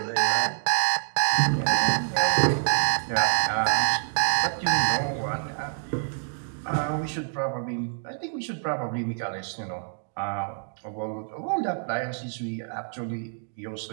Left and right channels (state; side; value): silent; left; digital silence